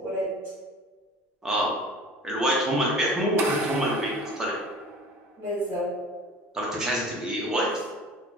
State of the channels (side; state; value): both; normal; correlation 0.42